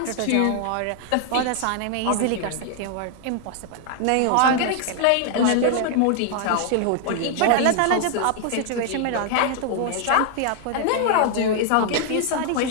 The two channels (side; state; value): both; different; correlation 0.00